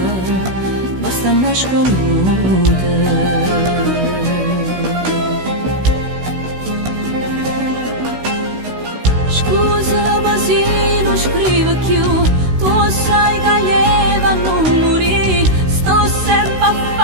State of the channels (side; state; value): left; late; 16 ms